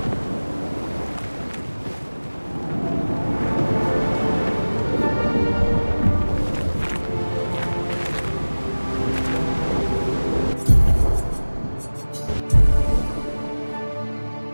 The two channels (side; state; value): both; inverted; correlation -1.00